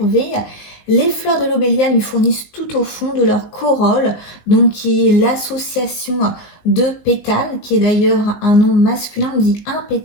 Les fleurs de l'obélia lui fournissent tout au fond de leur corolle, donc qui est l'association de pétales, qui est d'ailleurs un nom masculin, on dit un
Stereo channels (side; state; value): right; late; 19 ms